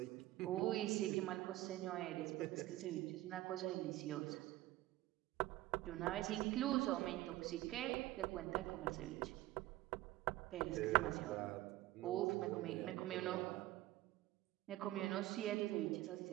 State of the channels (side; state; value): left; quieter; 16.7 dB